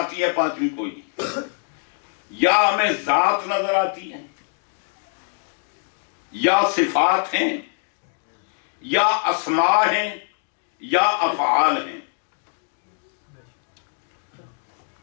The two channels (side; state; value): right; silent; 63 dB below the other